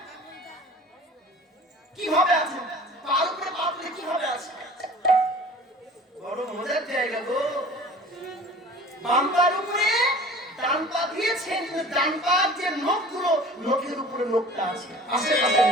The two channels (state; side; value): normal; both; correlation 0.44